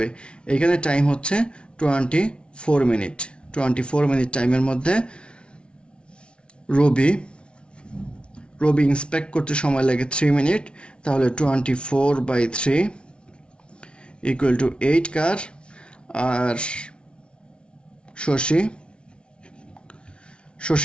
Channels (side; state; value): right; late; 0.058 ms